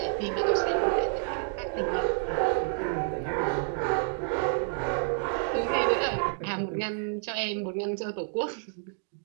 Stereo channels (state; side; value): silent; left; digital silence